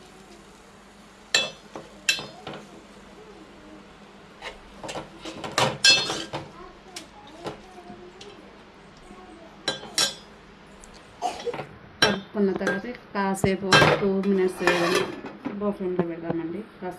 కలుపుకున్న తర్వాత కాసేపు 2 మినిట్స్ లో ఫ్లేమ్లో పెడదామండి.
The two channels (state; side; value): identical; both; correlation 1.00